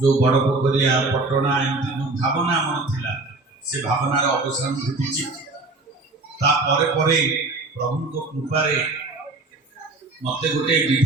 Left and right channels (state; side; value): quieter; left; 3.3 dB